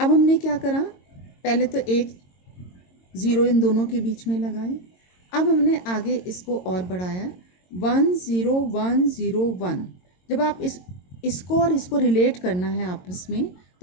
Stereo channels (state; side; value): late; right; 22 ms